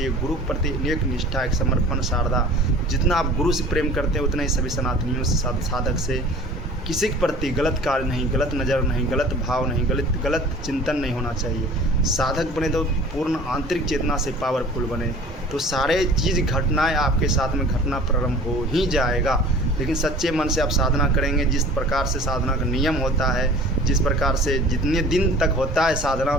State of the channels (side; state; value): both; normal; correlation 0.45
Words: गुरु प्रति एक निष्ठा, एक समर्पण, शारदा। जितना आप गुरु से प्रेम करते हैं उतना ही सभी सनातनियों से, साधक से किसी के प्रति गलत कार्य नहीं, गलत नज़र नहीं, गलत भाव नहीं, गलत चिंतन नहीं होना चाहिए। साधक बने तो पूर्ण आंतरिक चेतना से पावरफुल बने, तो सारे चीज़ घटनाएं आपके साथ में घटना प्रारंभ हो ही जाएगा। लेकिन सच्चे मन से आप साधना करेंगे, जिस प्रकार से साधना का नियम होता है, जिस प्रकार से जितने दिन तक होता है साधना,